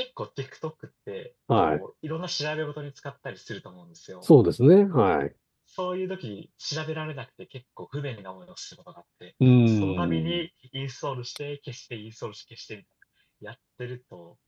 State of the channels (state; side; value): identical; both; correlation 1.00